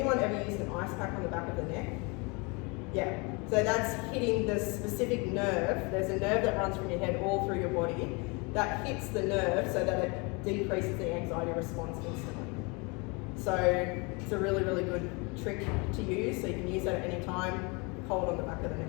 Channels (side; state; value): right; quieter; 29.5 dB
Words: ever used an ice pack on the back of the neck? Yeah, so that's hitting the specific nerve. There's a nerve that runs from your head all through your body that hits the nerve so that it decreases the anxiety response instantly. So it's a really, really good trick to use, so you can use that at any time, hold on the back of the neck.